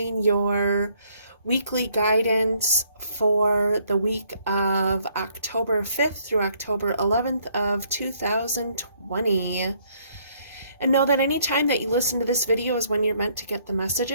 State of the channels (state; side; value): inverted; both; correlation -0.67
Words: your weekly guidance for the week of October 5th through October 11th of 2020. And know that any time that you listen to this video is when you're meant to get the